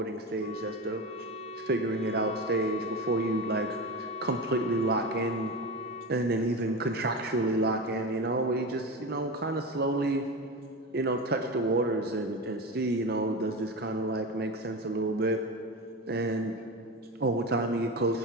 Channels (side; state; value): both; normal; correlation 0.24